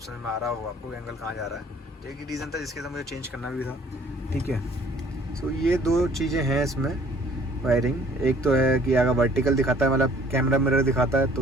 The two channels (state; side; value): normal; both; correlation 0.56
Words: में आ रहा हो आपको एंगल कहाँ जा रहा है। तो एक ही रीज़न था जिसके साथ मुझे चेंज करना भी था। ठीक है, सो ये 2 चीज़ें हैं इसमें वायरिंग। एक तो है कि अगर वर्टिकल दिखाता है, कैमरा मिरर दिखाता है,